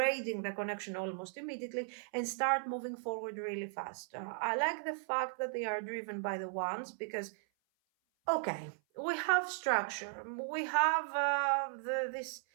the connection almost immediately and start moving forward really fast. I like the fact that they are driven by the Wands because, okay, we have structure, we have this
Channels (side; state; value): left; silent; 53 dB below the other